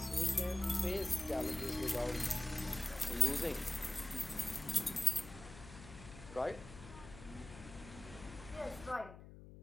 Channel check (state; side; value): noise; left; hum, 15 dB below the sound